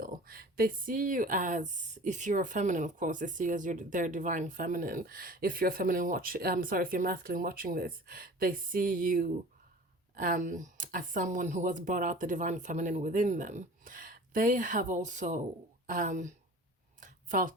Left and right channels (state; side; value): normal; both; correlation 0.42